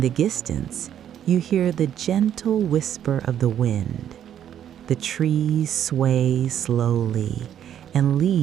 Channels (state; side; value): quieter; left; 10.0 dB